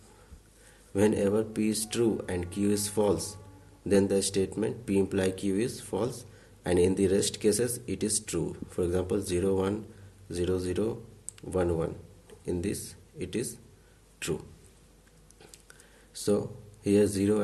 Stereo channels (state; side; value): identical; both; correlation 1.00